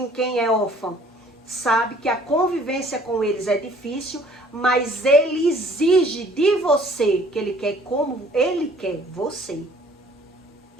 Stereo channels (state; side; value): normal; both; correlation 0.56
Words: Quem é órfão sabe que a convivência com eles é difícil, mas ele exige de você que ele quer como ele quer você.